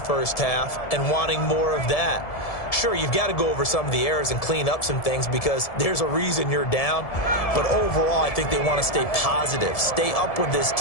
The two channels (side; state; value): right; late; 1.7 ms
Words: half and wanting more of that. Sure, you've got to go over some of the errors and clean up some things because there's a reason you're down. But overall, I think they want to stay positive, stay up with this